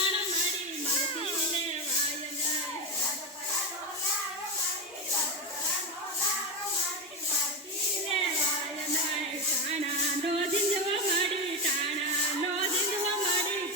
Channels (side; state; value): both; normal; correlation 0.14